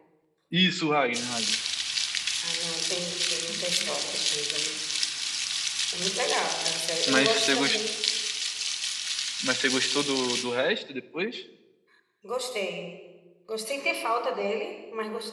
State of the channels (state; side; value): identical; both; correlation 1.00